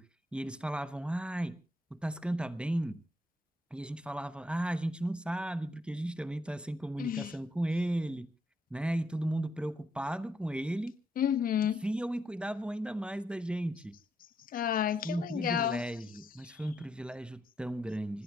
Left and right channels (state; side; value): normal; both; correlation 0.77